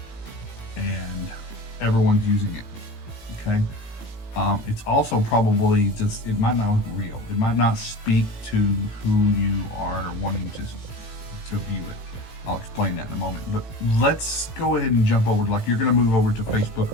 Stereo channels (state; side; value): late; right; 18 ms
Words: and everyone's using it. Okay, it's also probably just, it might not look real. It might not speak to who you are wanting to view it. I'll explain that in a moment, but let's go ahead and jump over, like you're going to move over to Facebook